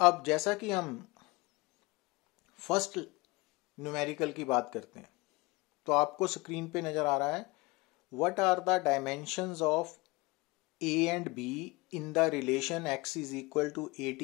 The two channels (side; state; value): right; quieter; 23.7 dB